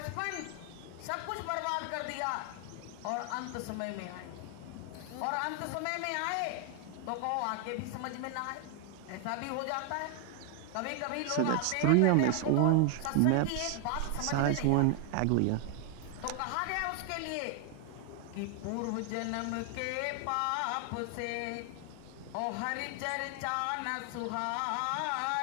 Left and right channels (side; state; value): both; different; correlation 0.00